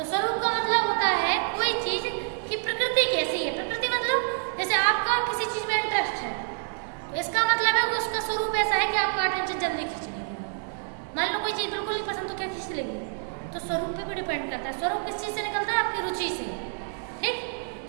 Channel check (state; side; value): silent; left; 60 dB below the other